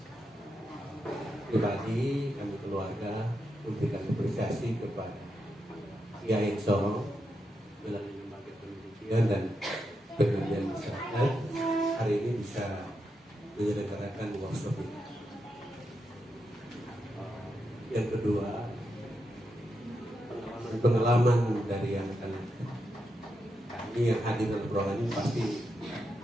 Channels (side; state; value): both; normal; correlation 0.85